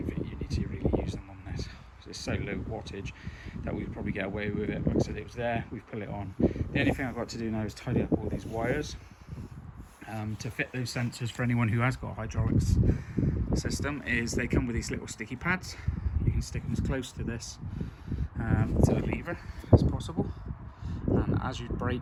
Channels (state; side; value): identical; both; correlation 1.00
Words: think you need to really use them on this. it's so low wattage that we'd probably get away with it. Like I said, it was there, we've put it on. The only thing I've got to do now is tidy up all these wires to fit those sensors. For anyone who has got a hydraulics system, is they come with these little sticky pads. You can stick them as close to this to the lever as possible, and as you